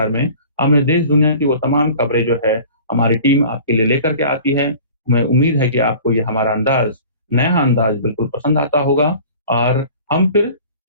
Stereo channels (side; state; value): both; inverted; correlation -0.44